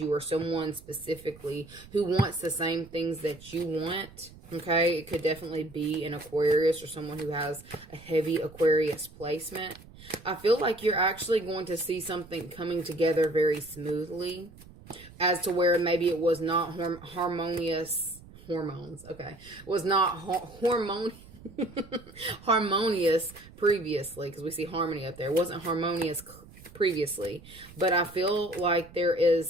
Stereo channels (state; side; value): noise; right; rumble, 20 dB below the sound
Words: or someone specifically who wants the same things that you want. Okay, it could definitely be an Aquarius or someone who has a heavy Aquarius placement. I feel like you're actually going to see something coming together very smoothly, as to where maybe it was not harmonious. Hormones, okay. Was not harmonious previously, because we see harmony up there. It wasn't harmonious previously, but I feel like there